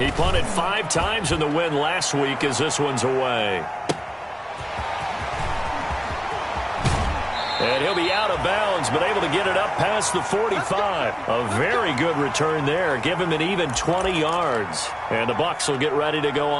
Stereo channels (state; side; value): identical; both; correlation 1.00